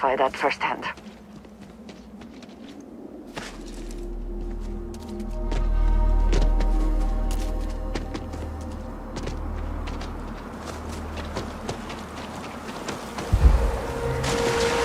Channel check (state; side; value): identical; both; correlation 1.00